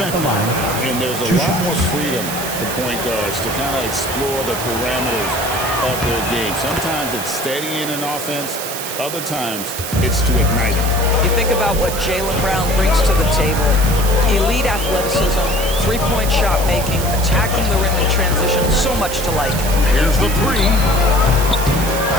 And there's a lot more freedom for point guards to kind of explore the parameters of their game. Sometimes it's steadying an offense. Other times, it's to ignite it. You think about what Jaylen Brown brings to the table. Elite athleticism, three-point shot making, attacking the rim in transition, so much to like. Here's the three.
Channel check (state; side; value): noise; right; hiss, 7 dB below the sound